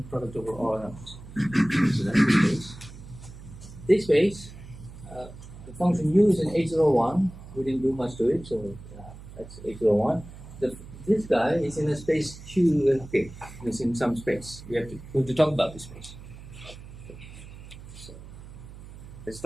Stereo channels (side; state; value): right; noise; hum, 16 dB below the sound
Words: product over all elements. So that's the space. This space, the function u is in H01. We didn't do much to it, so that's H01. This guy is in a space Q. Okay, it's in some space. We have to talk about this space. Okay. So let's